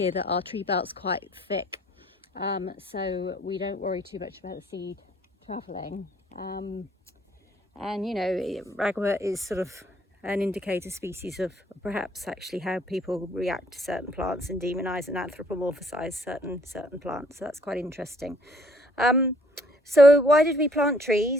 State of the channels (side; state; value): both; normal; correlation 0.61